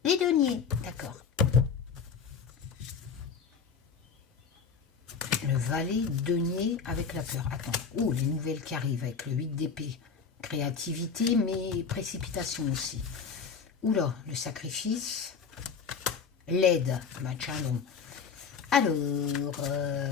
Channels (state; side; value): quieter; right; 6.0 dB